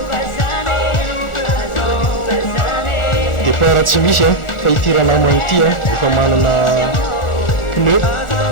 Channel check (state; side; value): late; right; 1.4 ms